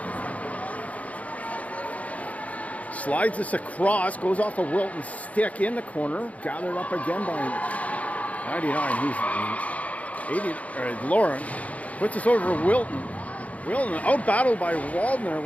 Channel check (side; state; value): right; late; 0.069 ms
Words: Slides this across, goes off a Wilton stick in the corner, gathered up again by 99. Who's 80? Lauren puts this over for Wilton. Wilton out battled by Waldner.